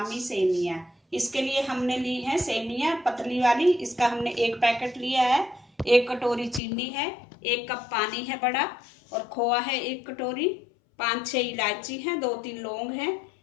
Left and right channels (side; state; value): right; drops out; at 6.6 s